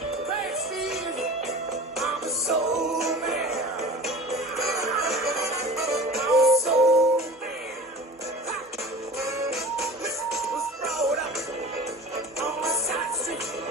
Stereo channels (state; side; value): normal; both; correlation 0.38